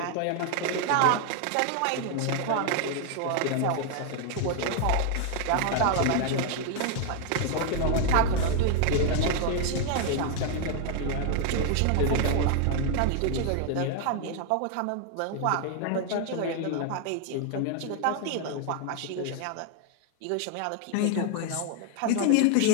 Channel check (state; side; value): different; both; correlation 0.00